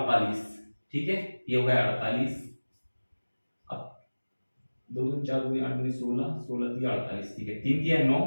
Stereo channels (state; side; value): inverted; both; correlation -1.00